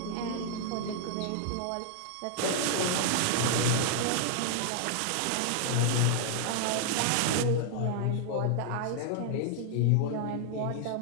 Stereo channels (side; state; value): both; different; correlation 0.00